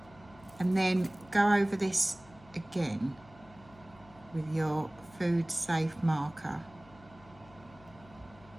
and then go over this again with your food safe marker.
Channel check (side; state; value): left; noise; hum, 23 dB below the sound